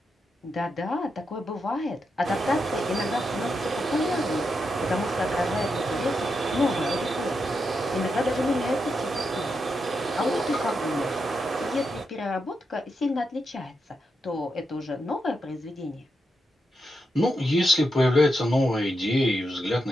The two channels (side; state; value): both; normal; correlation 0.85